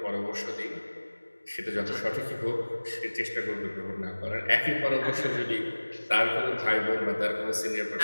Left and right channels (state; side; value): inverted; both; correlation -1.00